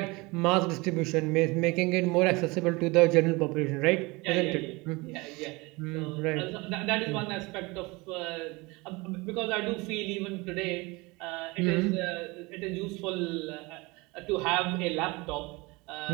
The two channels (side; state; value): left; quieter; 24.6 dB